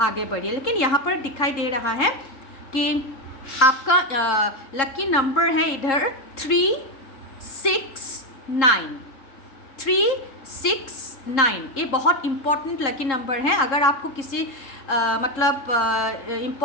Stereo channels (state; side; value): late; right; 3.7 ms